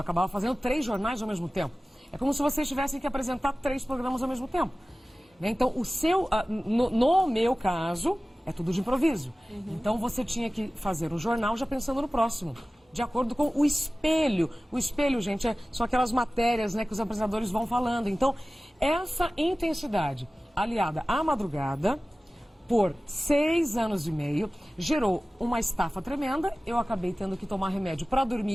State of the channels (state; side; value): normal; both; correlation 0.97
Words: acabava fazendo 3 jornais ao mesmo tempo. É como se vocês tivessem que apresentar 3 programas ao mesmo tempo. Né? Então, no meu caso, é tudo de improviso. Então, você tinha que fazer um jornal já pensando no próximo. De acordo com o espelho. O espelho, gente, são aquelas matérias, né, que os apresentadores vão falando. Então, essa intensidade aliada à madrugada, por 6 anos e meio, gerou uma estafa tremenda. Eu acabei tendo que tomar remédio para